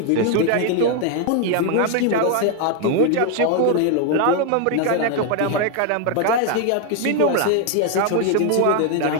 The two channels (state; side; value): different; both; correlation 0.01